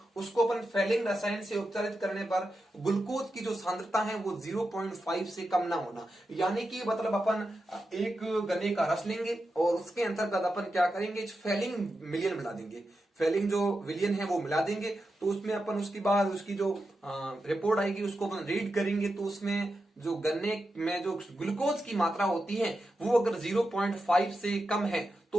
उसको अपन फैलिंग रसायन से उपचारित करने पर ग्लूकोज की जो सांद्रता है वो 0.5 से कम ना होना, यानी कि मतलब अपन एक गन्ने का रस लेंगे और उसके अंतर्गत अपन क्या करेंगे, फैलिंग मिलियन मिला देंगे, फैलिंग जो विलियन है वो मिला देंगे। तो उसमें अपन उसके बाद उसकी जो रिपोर्ट आएगी उसको अपन रीड करेंगे, तो उसमें जो गन्ने में जो ग्लूकोज की मात्रा होती है वो अगर 0.5 से कम है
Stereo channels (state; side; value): normal; both; correlation 0.89